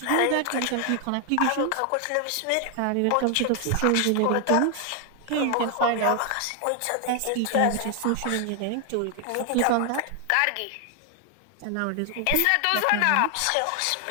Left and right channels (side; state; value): both; different; correlation 0.00